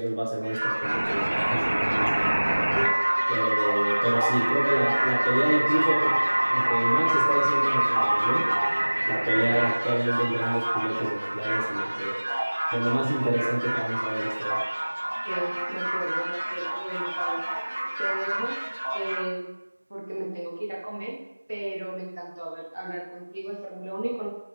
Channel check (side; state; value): both; inverted; correlation -1.00